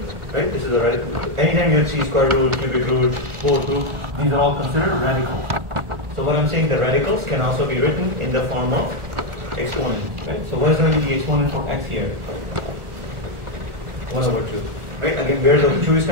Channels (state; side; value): late; left; 1.4 ms